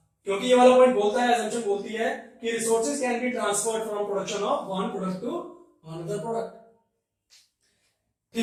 क्योंकि ये वाला पॉइंट बोलता है, assumption बोलती है कि resources can be transferred from production of one product to another product.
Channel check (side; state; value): both; identical; correlation 1.00